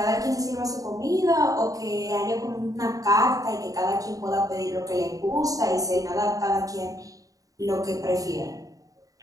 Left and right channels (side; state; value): left; late; 0.17 ms